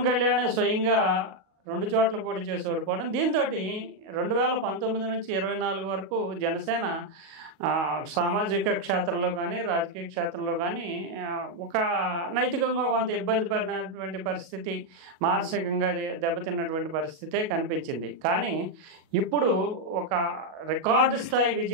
కళ్యాణ్ స్వయంగా 2 చోట్ల పోటీ చేసి ఓడిపోవడం. దీంతో 2019 నుంచి 24 వరకు జనసేన సామాజిక క్షేత్రంలో కానీ రాజకీయ క్షేత్రంలో కానీ ఒక నైతికంగా కొంత ఇబ్బంది పడినటువంటి పరిస్థితి, మానసికంగా దెబ్బతిన్నటువంటి పరిస్థితే కనిపించింది. కానీ ఇప్పుడు ఒక రికార్డు స్థాయి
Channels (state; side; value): late; left; 37 ms